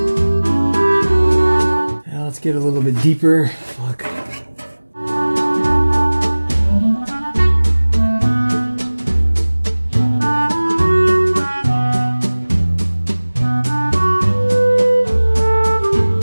Get a little bit deeper. Fuck.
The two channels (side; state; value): both; inverted; correlation -1.00